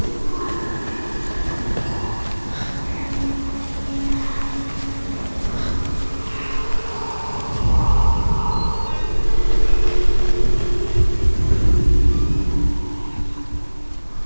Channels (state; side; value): inverted; both; correlation -1.00